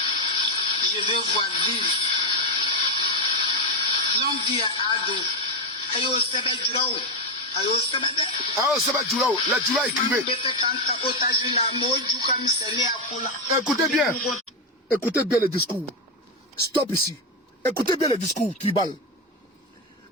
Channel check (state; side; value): normal; both; correlation 0.08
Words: Je veux voir vivre. Longue vie à Ado. Ayo sebe djurao. Ayo sebe de. Ah, c'est pas Djoula, la Djoula écrivait. Écoutez bien. Écoutez bien le discours. Stop ici. Écoutez bien le discours tribal.